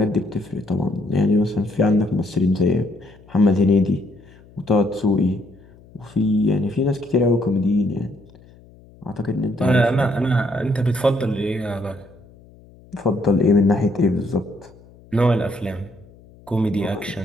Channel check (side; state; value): left; noise; hum, 25 dB below the sound